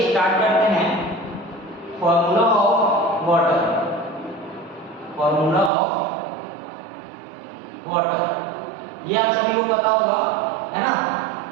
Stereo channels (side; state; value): left; drops out; at 5.7 s